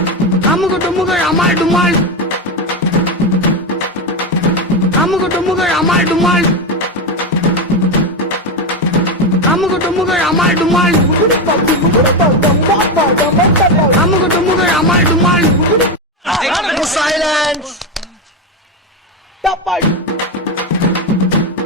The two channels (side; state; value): both; normal; correlation 0.12